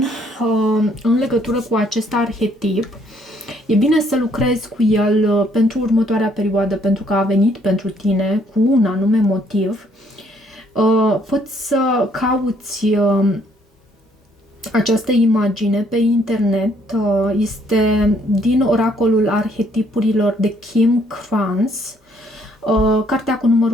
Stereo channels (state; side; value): normal; both; correlation 0.66